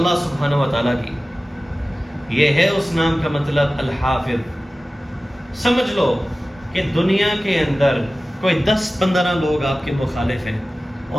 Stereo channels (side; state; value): both; normal; correlation 0.96